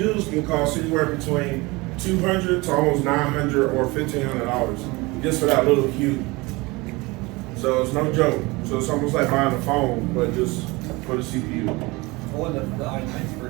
can cost anywhere between $200 to almost $900 or $1,500 just for that little cube. So it's no joke. So it's almost like buying a phone, but just for the CPU. When the i9s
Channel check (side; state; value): left; quieter; 23.6 dB